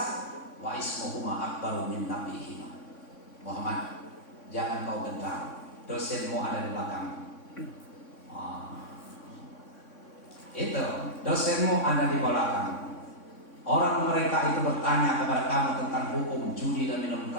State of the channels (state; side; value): late; right; 3.6 ms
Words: wa ismuhuma akbaru min nabihima. Muhammad, jangan kau gentar. Dosenmu ada di belakang. Itu dosenmu ada di belakang. Orang mereka itu bertanya kepada kamu tentang hukum judi dan minum